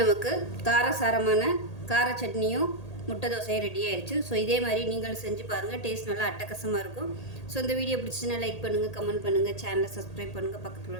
நமக்கு காரசாரமான கார சட்னியும் முட்டை தோசையும் ரெடி ஆயிடுச்சு. ஸோ இதே மாதிரி நீங்களும் செஞ்சு பாருங்கள். டேஸ்ட் நல்லா அட்டகாசமாக இருக்கும். ஸோ இந்த வீடியோ பிடிச்சிச்சுன்னா லைக் பண்ணுங்கள், கமெண்ட் பண்ணுங்கள், சேனலை சப்ஸ்கிரைப் பண்ணுங்கள், பக்கத்தில் உள்ள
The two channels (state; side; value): late; right; 1.8 ms